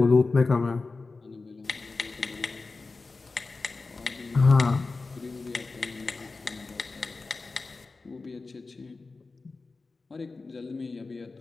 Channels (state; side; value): quieter; right; 3.9 dB